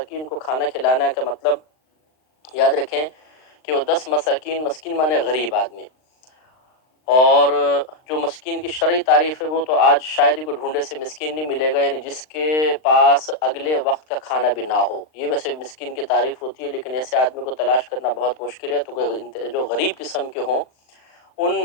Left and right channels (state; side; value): late; right; 39 ms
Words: کو کھانا کھلانا کا مطلب یاد رکھیں کہ وہ 10 مساکین، مسکین مانے غریب آدمی، اور جو مسکین کی شرعی تعریف ہے وہ تو آج شاید ہی کوئی ڈھونڈے سے مسکین نہیں ملے گا، یعنی جس کے پاس اگلے وقت کا کھانا بھی نہ ہو، یہ ویسے مسکین کی تعریف ہوتی ہے، لیکن ایسے آدمی کو تلاش کرنا بہت مشکل ہے۔ تو جو غریب قسم کے ہوں ان